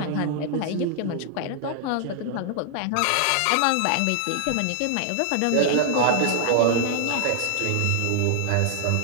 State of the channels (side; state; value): both; different; correlation 0.00